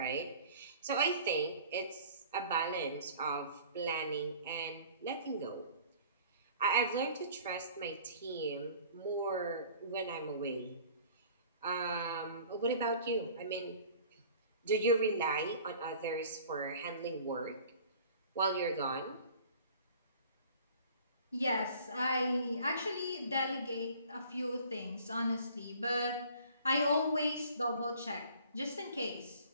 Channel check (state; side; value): inverted; both; correlation -0.48